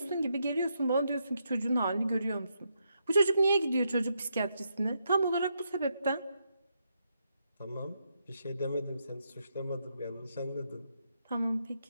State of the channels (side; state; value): both; inverted; correlation -0.80